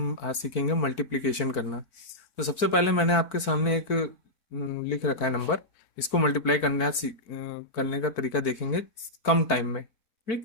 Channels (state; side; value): late; right; 4.5 ms